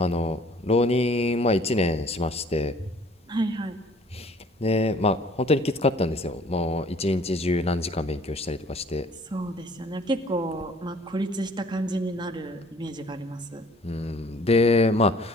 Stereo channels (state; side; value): normal; both; correlation 0.54